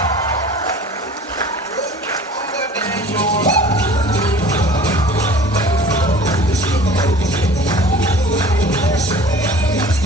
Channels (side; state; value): both; normal; correlation 0.45